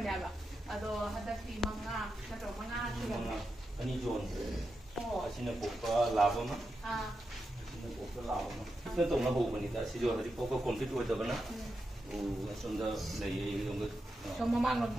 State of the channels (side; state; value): both; normal; correlation 0.88